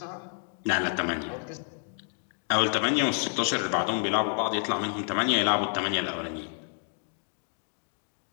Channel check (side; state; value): right; silent; 58 dB below the other